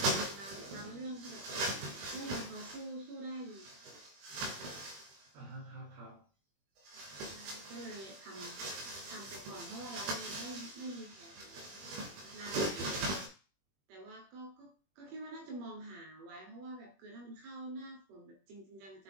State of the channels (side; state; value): left; late; 21 ms